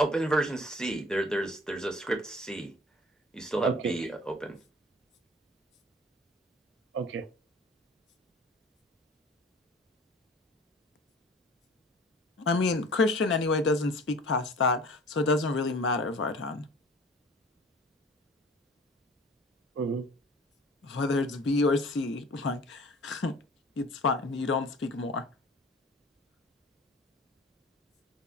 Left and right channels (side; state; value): both; normal; correlation 0.45